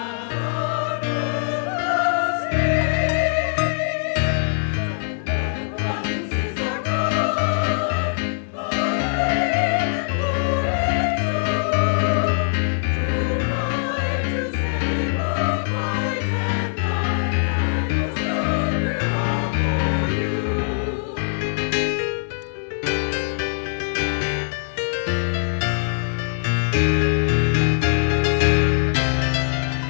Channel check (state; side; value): silent; right; digital silence